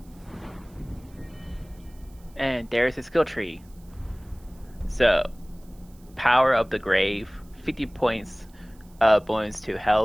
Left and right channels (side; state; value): right; noise; hiss, 30 dB below the sound